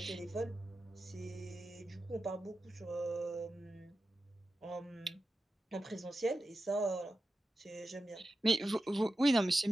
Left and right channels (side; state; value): both; normal; correlation 0.92